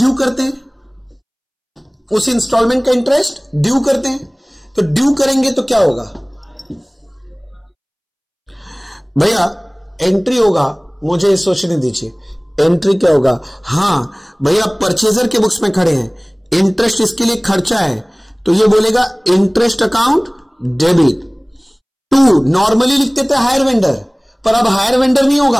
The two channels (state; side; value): identical; both; correlation 1.00